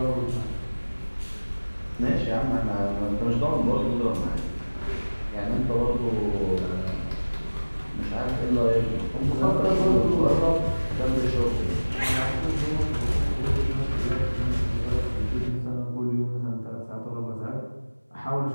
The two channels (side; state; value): both; inverted; correlation -1.00